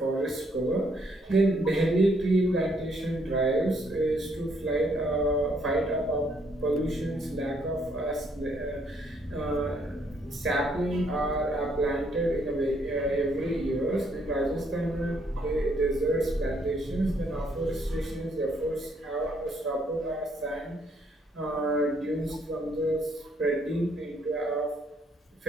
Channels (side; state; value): both; normal; correlation 0.70